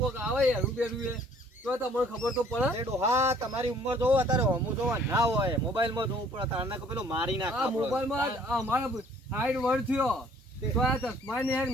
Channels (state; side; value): normal; both; correlation 0.58